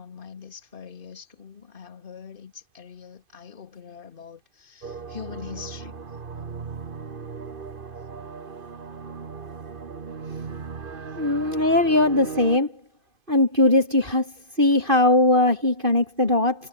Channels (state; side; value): late; left; 2.5 ms